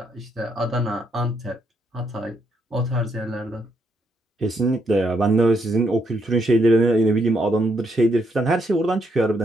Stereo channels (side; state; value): both; normal; correlation 0.76